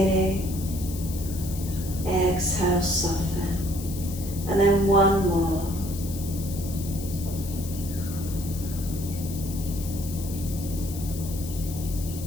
Exhale, soften. And then 1 more.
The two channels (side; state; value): left; noise; hiss, 12 dB below the sound